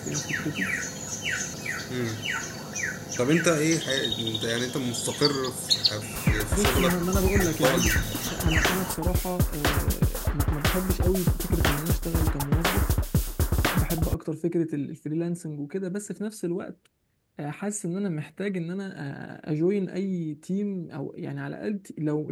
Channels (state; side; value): identical; both; correlation 1.00